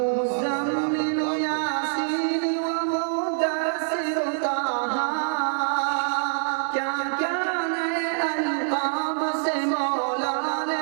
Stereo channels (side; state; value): left; silent; digital silence